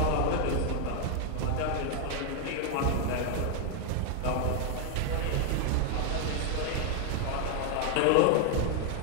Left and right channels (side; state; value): both; different; correlation 0.00